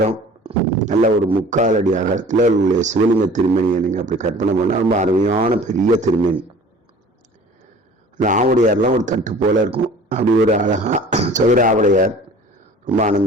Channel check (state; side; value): normal; both; correlation 0.46